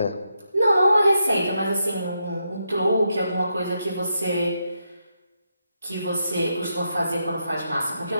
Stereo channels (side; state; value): both; inverted; correlation -0.83